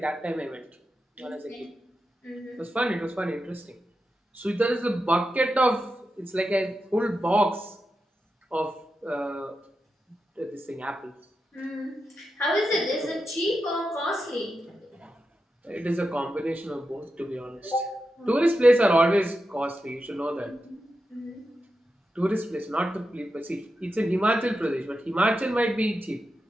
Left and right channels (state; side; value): normal; both; correlation 0.89